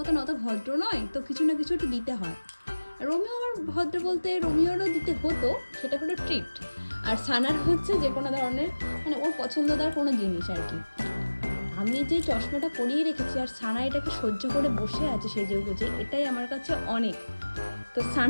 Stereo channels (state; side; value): inverted; both; correlation -1.00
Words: অত ভদ্র নয়, তো কিছু না কিছু একটু দিতে হয়। রোমিও আমার ভদ্র বলতে রোমিওরও দিতে হতো, সেটা হলো ট্রিট। আর সানার হচ্ছে যে কোনো ধরনের মানে ওর পছন্দদার কোনো জিনিস আর কি। আমি যে চশমাটা পরিয়ে রেখেছি আর সানা এটাকে সহ্য করে বসে আছে সেজে গুজে, এটাই আমার কাছে অনেক। তো